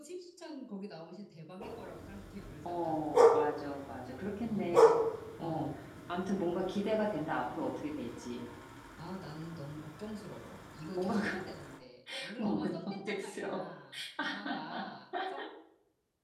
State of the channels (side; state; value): both; identical; correlation 1.00